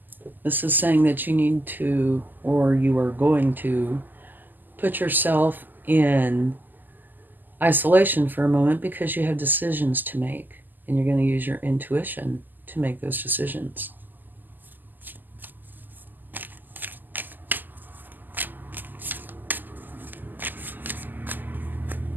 This is saying that you need to, or you are going to, put yourself in isolation for a moment because you have decisions to make, and you're going to use your intuition to make those decisions.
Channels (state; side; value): late; left; 0.087 ms